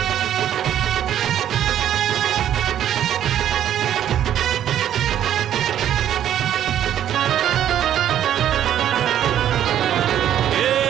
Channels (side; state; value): left; quieter; 10.7 dB